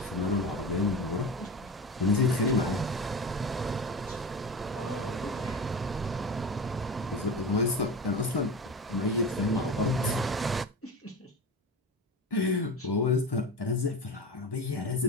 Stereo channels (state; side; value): normal; both; correlation 0.28